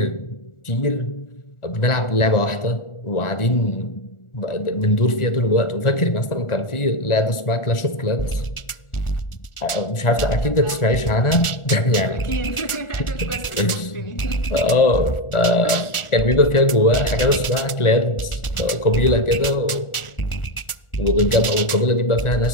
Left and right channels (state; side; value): late; right; 1.4 ms